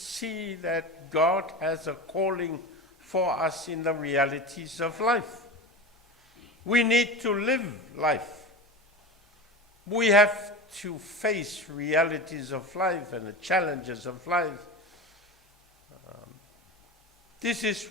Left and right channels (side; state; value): both; normal; correlation 0.27